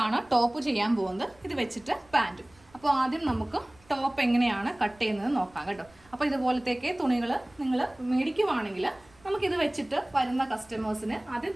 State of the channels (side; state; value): right; noise; rumble, 29 dB below the sound